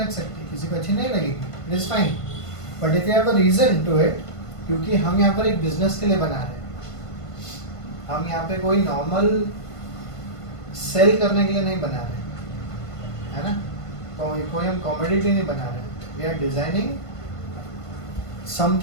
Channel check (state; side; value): late; right; 1.5 ms